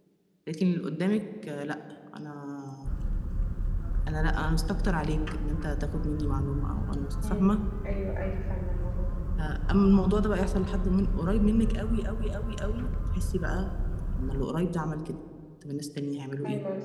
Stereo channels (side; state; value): both; identical; correlation 1.00